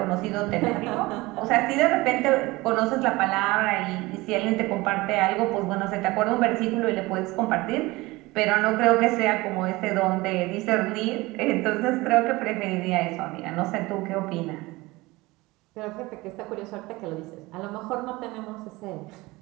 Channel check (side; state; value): left; quieter; 21.3 dB